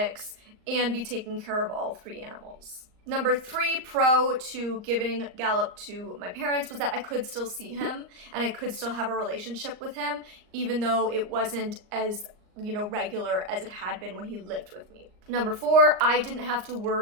and be taking care of all 3 animals. Number 3 pro to giving Gallop to my parents was that I could still see him and I could still have a relationship with him, even though it wasn't as, regular as it had been when he lived with me. Number 4, I didn't have to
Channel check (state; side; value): late; left; 38 ms